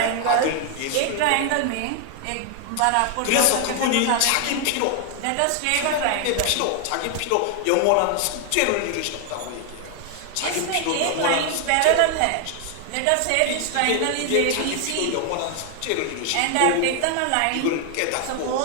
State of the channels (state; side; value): different; both; correlation 0.00